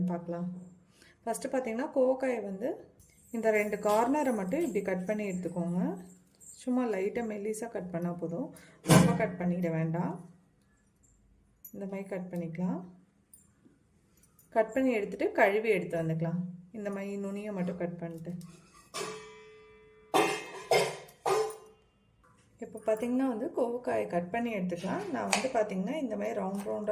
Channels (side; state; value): both; identical; correlation 1.00